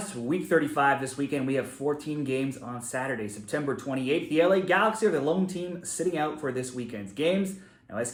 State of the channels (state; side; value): identical; both; correlation 1.00